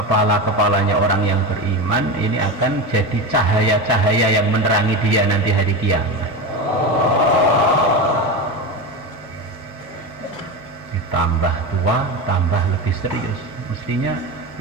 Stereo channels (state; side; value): normal; both; correlation 0.22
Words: orang yang beriman, ini akan jadi cahaya-cahaya yang menerangi dia nanti hari kiamat. Ditambah tua, tambah lebih serius. Mestinya